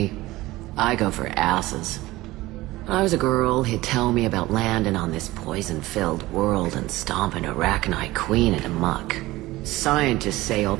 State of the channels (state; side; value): quieter; left; 18.5 dB